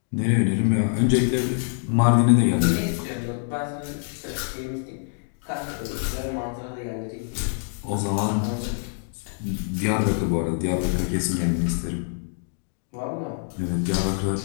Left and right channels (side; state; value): right; silent; digital silence